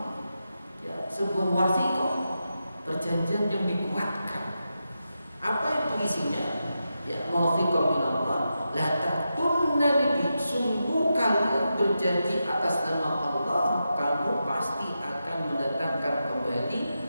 ya, sebuah wasiqah, perjanjian yang dikuatkan. Apa itu isinya? Ya, mawthiqan minallah La takunna libi, sungguh kalian berjanji atas nama Allah, kamu pasti akan mendatangkan kembali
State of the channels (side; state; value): both; inverted; correlation -0.88